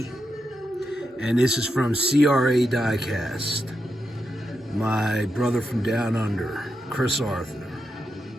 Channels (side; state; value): both; normal; correlation 0.86